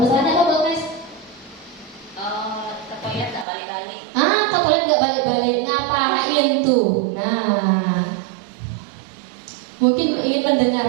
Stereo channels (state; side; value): drops out; left; at 3.5 s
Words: apa Bu Agnes? Ke toilet nggak balik-balik. Ke toilet nggak balik-balik, ngapain tuh? Nah, mungkin ingin